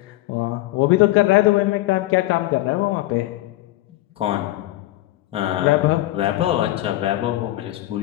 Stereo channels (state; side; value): quieter; right; 16.7 dB